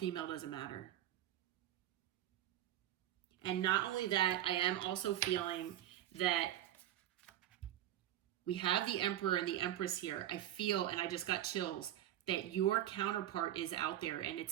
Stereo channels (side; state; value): left; quieter; 12.5 dB